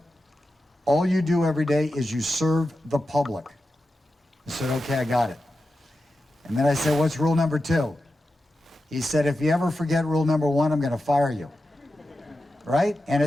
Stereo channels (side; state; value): both; normal; correlation 0.91